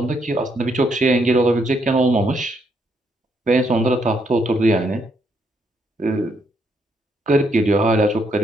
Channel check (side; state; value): both; normal; correlation 0.75